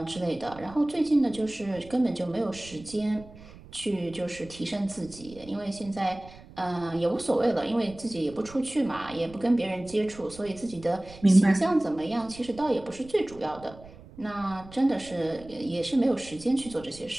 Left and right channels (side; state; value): right; noise; rumble, 19 dB below the sound